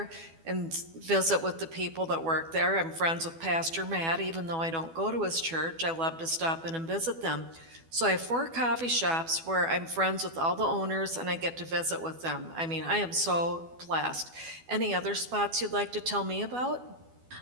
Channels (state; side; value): late; left; 12 ms